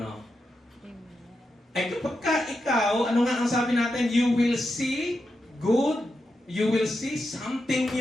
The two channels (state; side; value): normal; both; correlation 0.87